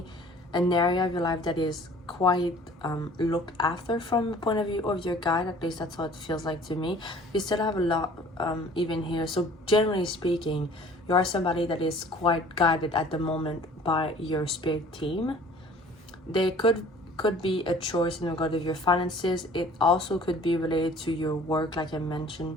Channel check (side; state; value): both; normal; correlation 0.50